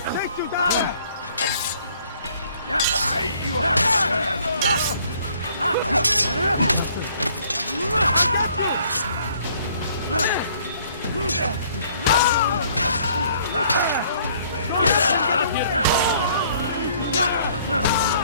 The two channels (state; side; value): inverted; both; correlation -0.60